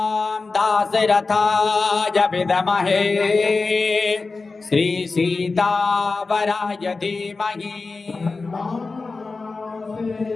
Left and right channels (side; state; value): right; quieter; 3.9 dB